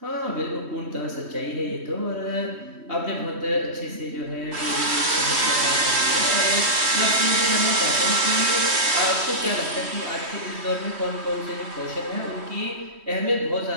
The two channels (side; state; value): left; late; 3.1 ms